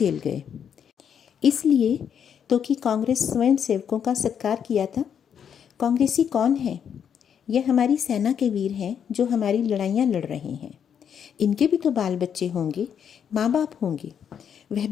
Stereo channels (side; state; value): right; quieter; 8.1 dB